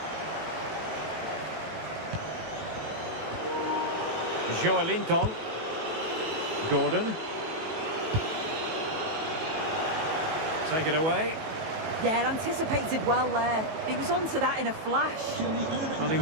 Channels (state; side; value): late; left; 18 ms